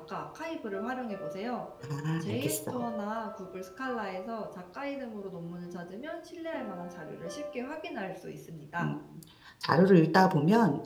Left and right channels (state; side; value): identical; both; correlation 1.00